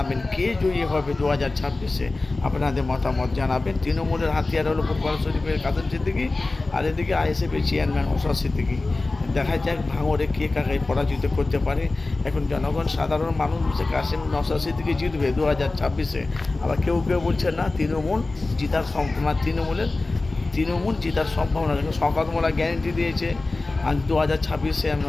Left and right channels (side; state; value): right; quieter; 3.3 dB